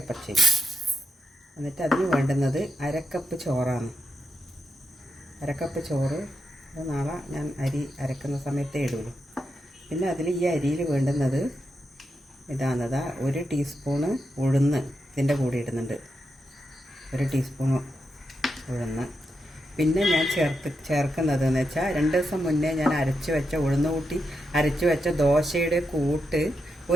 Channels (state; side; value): normal; both; correlation 0.85